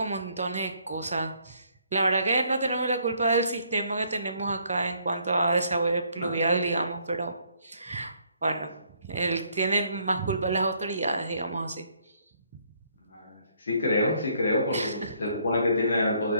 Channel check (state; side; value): inverted; both; correlation -0.67